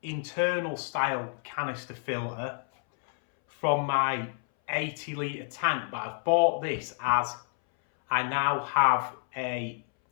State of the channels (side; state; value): right; silent; 59 dB below the other